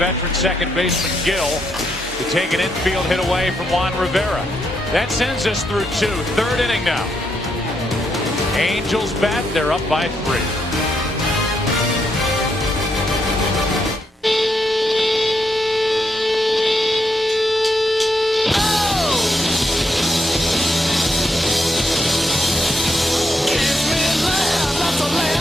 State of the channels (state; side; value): normal; both; correlation 0.79